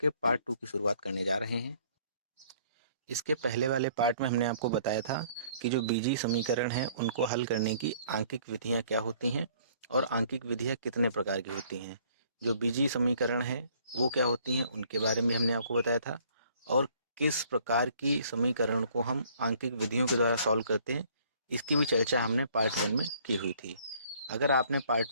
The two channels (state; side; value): inverted; both; correlation -0.59